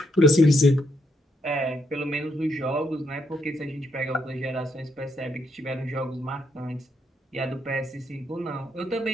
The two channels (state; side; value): normal; both; correlation 0.76